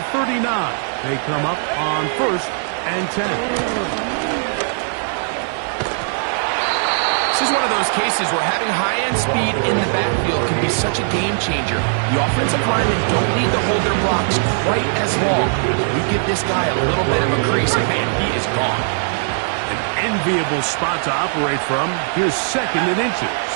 39, they come up on first and 10. This is one of those cases where having high-end speed in the backfield can be such a game changer. The offensive linemen don't need to hold their blocks quite as long. We give this guy a little bit of a crease, and man, he is gone. An enviable spot to operate from. Here's second and inches.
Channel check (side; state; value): left; silent; digital silence